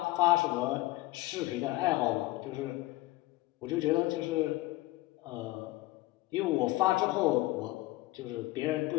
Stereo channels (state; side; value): quieter; right; 19.0 dB